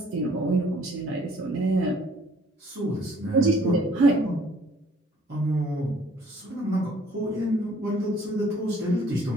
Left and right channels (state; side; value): normal; both; correlation 0.59